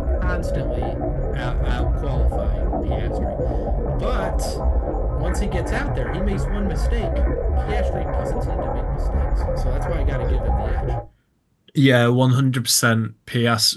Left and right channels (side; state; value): both; identical; correlation 1.00